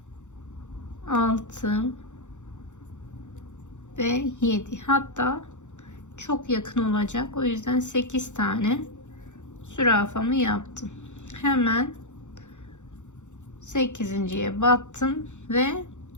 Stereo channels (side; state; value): right; late; 0.84 ms